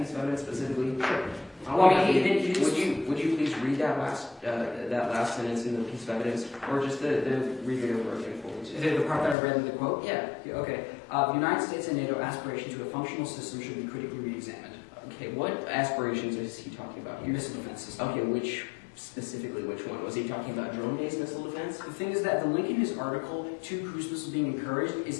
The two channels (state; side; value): drops out; right; at 9.3 s